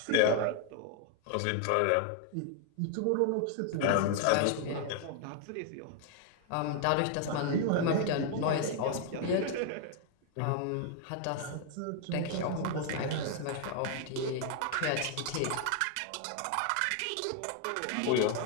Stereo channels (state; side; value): different; both; correlation 0.01